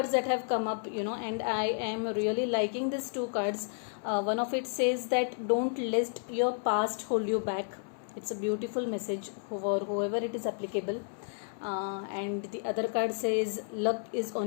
that have come up, and I am really liking these two cards. One of it says that don't let your past hold you back. It's a beautiful message for whoever it is applicable. And the other card says luck is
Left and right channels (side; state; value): right; silent; 57 dB below the other